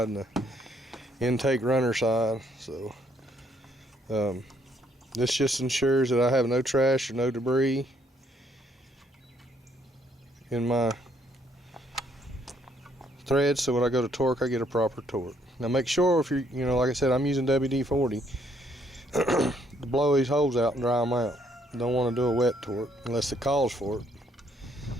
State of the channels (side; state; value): both; normal; correlation 0.69